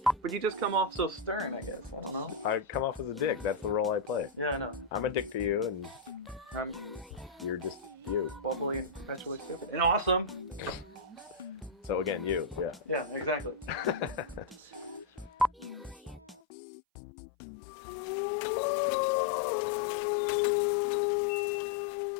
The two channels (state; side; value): drops out; right; at 16.4 s